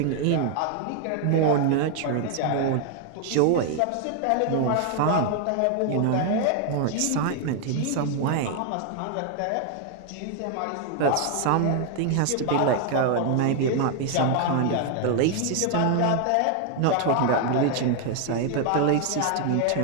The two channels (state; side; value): different; both; correlation 0.00